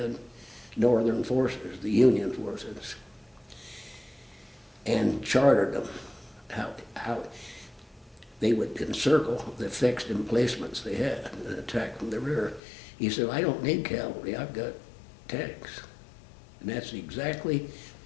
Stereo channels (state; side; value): drops out; right; at 12.6 s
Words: northern forces, the Union forces, and chartered them how they would encircle the fixed emplacements they had and attack from the rear. He said, I don't need cavalry, I've got tanks. And that's exactly